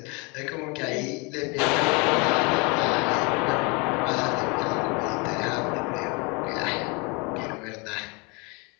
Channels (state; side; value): quieter; right; 29.8 dB